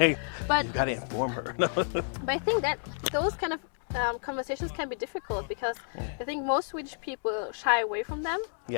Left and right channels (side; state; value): right; silent; digital silence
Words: but you gotta inform her. But I think that those kind of conversations can be difficult because I think most Swedish people shy away from them.